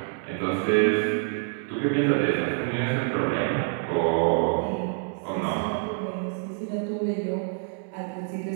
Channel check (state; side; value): silent; left; 60 dB below the other